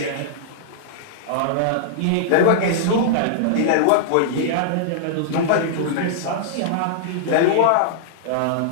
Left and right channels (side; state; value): both; different; correlation -0.02